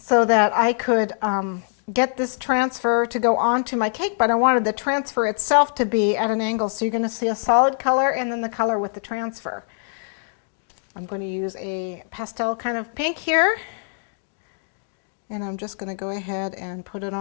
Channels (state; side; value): silent; right; 63 dB below the other